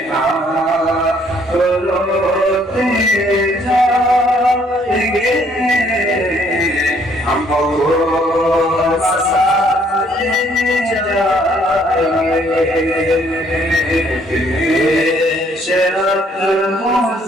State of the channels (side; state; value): both; normal; correlation 0.65